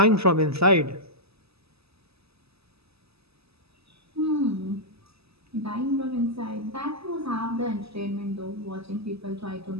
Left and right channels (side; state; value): left; late; 0.78 ms